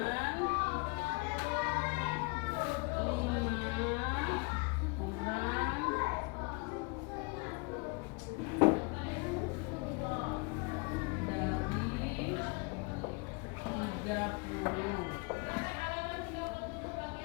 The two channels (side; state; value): right; quieter; 31.1 dB